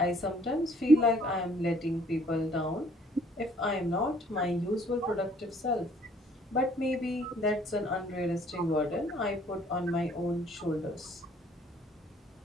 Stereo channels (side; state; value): both; normal; correlation 0.60